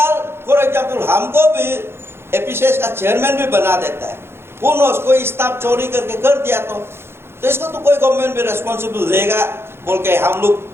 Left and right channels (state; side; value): late; left; 0.12 ms